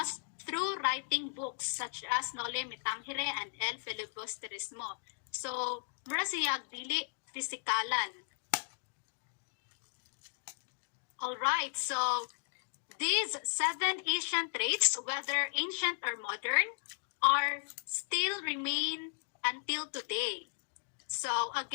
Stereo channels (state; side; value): silent; right; digital silence